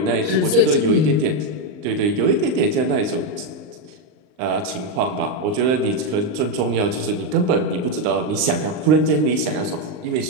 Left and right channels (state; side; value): late; left; 39 ms